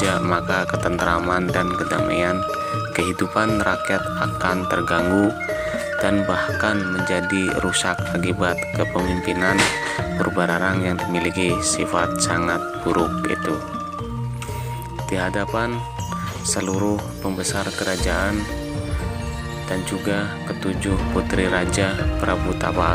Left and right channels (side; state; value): both; identical; correlation 1.00